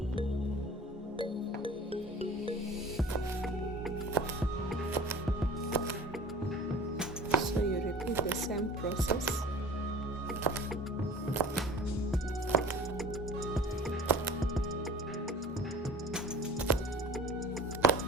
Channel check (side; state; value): both; normal; correlation 0.43